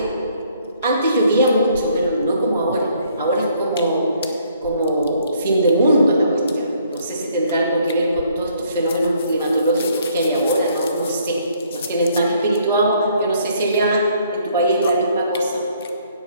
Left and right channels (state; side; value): inverted; both; correlation -0.65